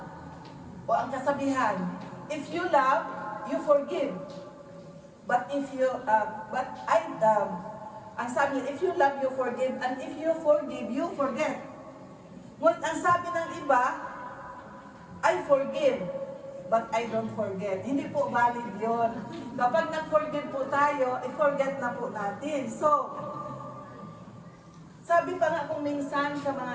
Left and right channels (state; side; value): identical; both; correlation 1.00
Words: o ang kasabihan, if you love, you forgive. But if you, ang sabi, if you love, you forgive, and if you forgive, you forget. Ngunit ang sabi ng iba, I forgive, but I don't forget. Hindi po valid yun. Kapag nag-forgive po tayo, i-forget na po natin. So, sabi pa nga kung minsan sa